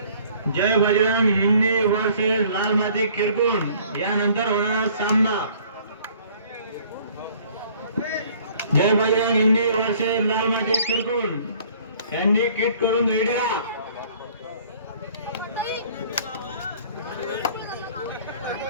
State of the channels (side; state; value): both; inverted; correlation -0.55